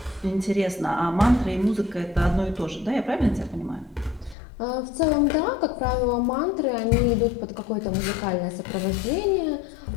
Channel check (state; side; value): drops out; right; at 4.4 s